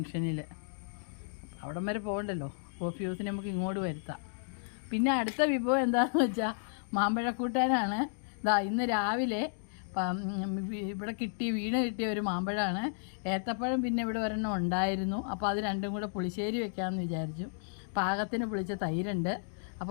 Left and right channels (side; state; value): right; silent; digital silence